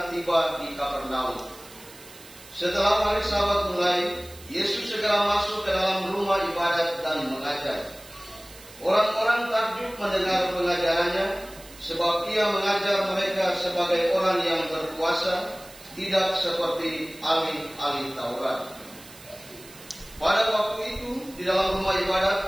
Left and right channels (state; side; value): noise; right; hiss, 20 dB below the sound